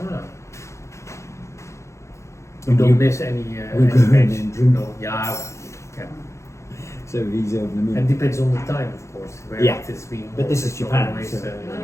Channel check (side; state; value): right; late; 0.14 ms